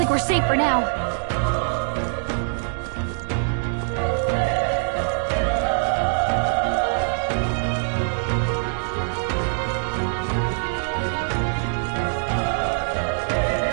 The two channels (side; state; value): left; silent; digital silence